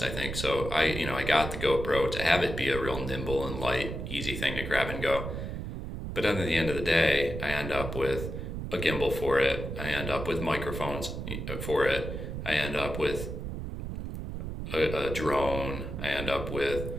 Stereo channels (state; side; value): noise; right; rumble, 6 dB below the sound